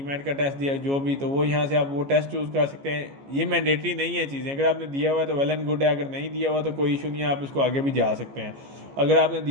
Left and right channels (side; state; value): left; late; 15 ms